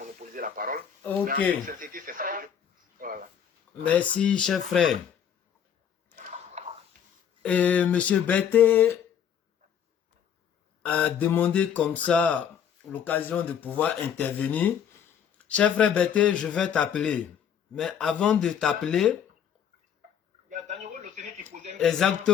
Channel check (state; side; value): quieter; right; 8.5 dB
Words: la parole. Ok. Mais en toute sincérité, c'est ça. Voilà. Merci, cher frère. Et Monsieur Betté a demandé comme ça l'occasion de pouvoir intervenir. Cher frère Betté, je vais t'appeler. Mais avant de t'appeler,